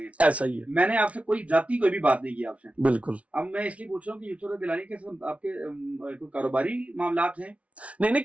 ऐसा ही है। मैंने आपसे कोई जाती कोई भी बात नहीं की आपसे। बिल्कुल। अब मैं इसलिए पूछ रहा हूँ कि यूसुफ रज़ा गिलानी के साथ आपके कोई कारोबारी मामलात हैं? नहीं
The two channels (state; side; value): late; left; 0.064 ms